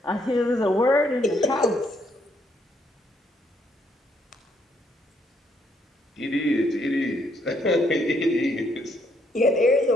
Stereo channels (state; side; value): normal; both; correlation 0.72